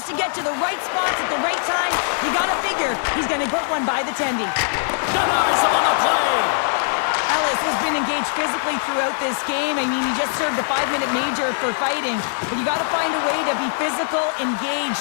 to get to the right spots at the right time, you got to figure he's going to put one by the tendy. Denies him on the play. Ellis has been engaged physically throughout this game. I mean, he just served a 5-minute major for fighting, but you got to find a way to be physical,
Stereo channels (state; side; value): silent; right; 65 dB below the other